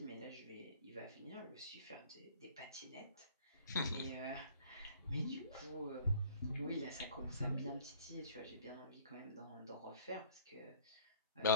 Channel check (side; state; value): both; inverted; correlation -0.52